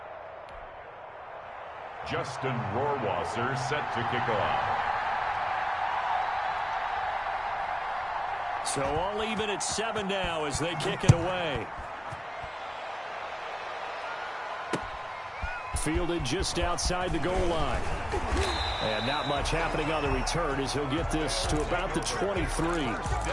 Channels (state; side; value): identical; both; correlation 1.00